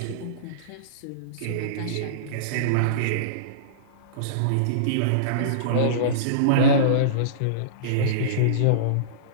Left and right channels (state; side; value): different; both; correlation -0.05